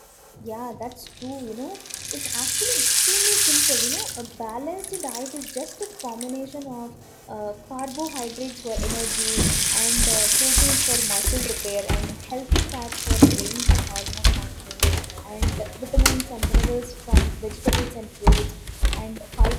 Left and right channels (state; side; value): identical; both; correlation 1.00